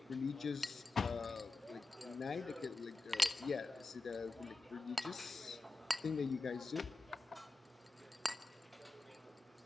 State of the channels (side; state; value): right; quieter; 3.2 dB